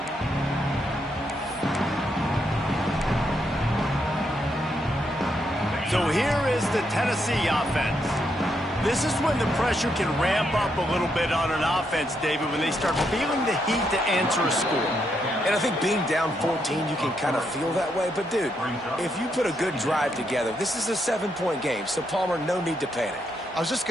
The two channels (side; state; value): both; normal; correlation 0.79